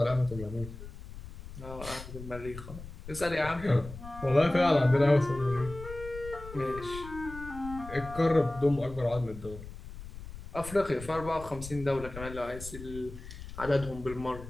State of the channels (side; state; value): left; noise; rumble, 13 dB below the sound